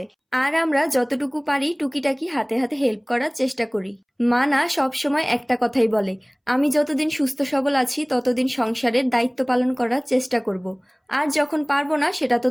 আর আমরা যতটুকু পারি টুকিটাকি হাতে হাতে হেল্প করার চেষ্টা করি। মা না সবসময় একটা কথাই বলে, আমি যতদিন সুস্থ সবল আছি ততদিন সংসারের দায়িত্ব পালন করার চেষ্টা করব। আর যখন পারবো না সেটা তো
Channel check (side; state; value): both; identical; correlation 1.00